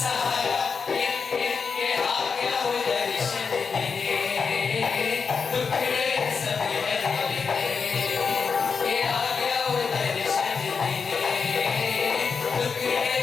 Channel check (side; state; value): right; quieter; 5.5 dB